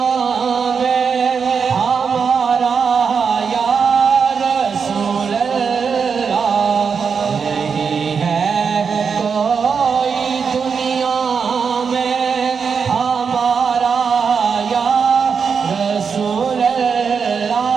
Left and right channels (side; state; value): left; quieter; 6.0 dB